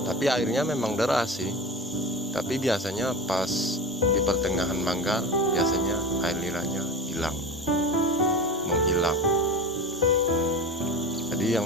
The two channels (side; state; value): both; normal; correlation 0.28